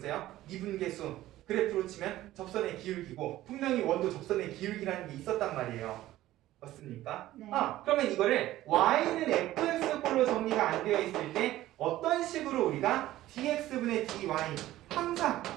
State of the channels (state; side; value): quieter; left; 15.1 dB